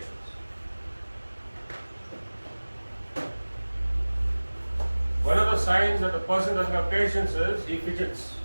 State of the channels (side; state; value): both; inverted; correlation -1.00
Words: One of the signs that a person doesn't have patience is he fidgets.